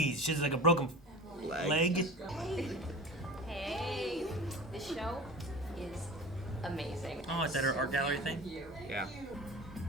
she's like a broken leg. Hey, this show is amazing. Oh, is that her art gallery thing? Yeah.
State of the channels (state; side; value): normal; both; correlation 0.35